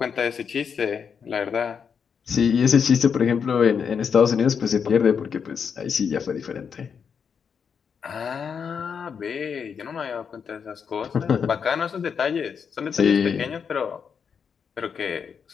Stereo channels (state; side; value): quieter; right; 6.7 dB